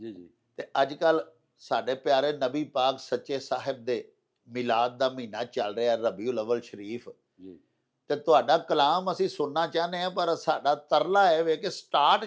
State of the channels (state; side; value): identical; both; correlation 1.00